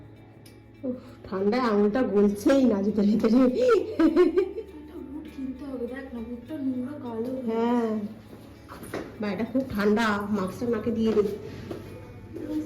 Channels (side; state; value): both; identical; correlation 1.00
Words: ঠান্ডায় আঙুলটা গলছেই না ভিতরে ভিতরে। হ্যাঁ, বাইরেটা খুব ঠান্ডা, মাস্কটা নাকে দিয়ে দিই।